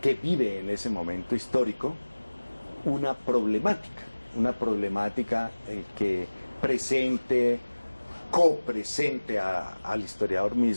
vive en ese momento histórico una problemática que presente, copresente al historiador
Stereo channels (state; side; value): inverted; both; correlation -1.00